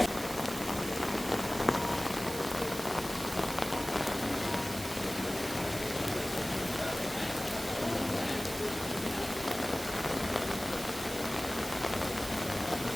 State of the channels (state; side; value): noise; right; hiss, 10 dB below the sound